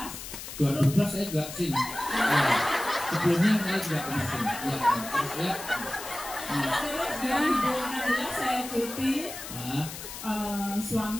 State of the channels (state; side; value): noise; left; hiss, 10 dB below the sound